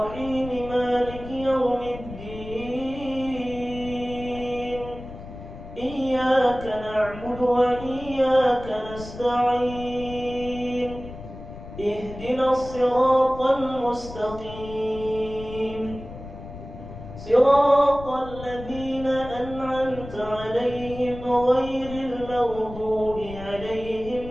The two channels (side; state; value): left; noise; rumble, 13 dB below the sound